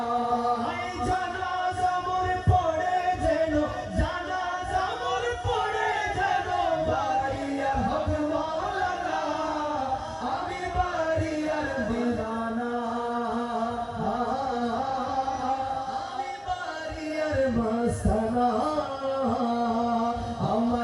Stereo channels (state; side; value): identical; both; correlation 1.00